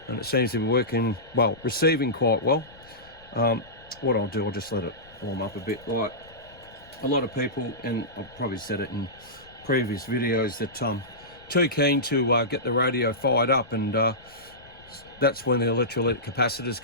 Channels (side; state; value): left; noise; rumble, 24 dB below the sound